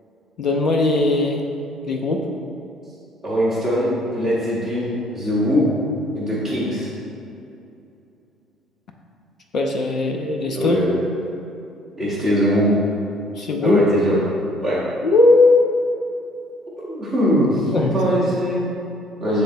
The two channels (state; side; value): normal; both; correlation 0.61